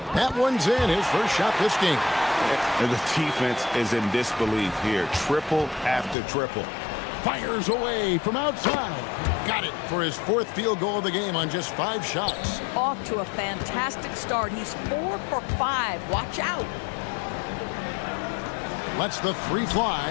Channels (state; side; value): drops out; right; at 6.2 s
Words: That one's in. His first shot this game. And the defense is in disbelief here. Triple after triple. Fires away from outside. Got it for his 4th field goal of the game on just 5 shots. Off to a fantastic start. He's 4 for 5. Watch out. Lets the 3